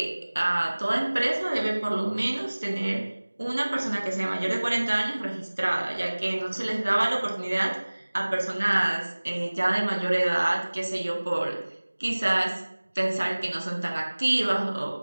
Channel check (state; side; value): inverted; both; correlation -1.00